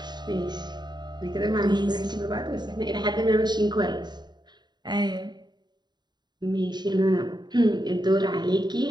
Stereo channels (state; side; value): late; left; 0.21 ms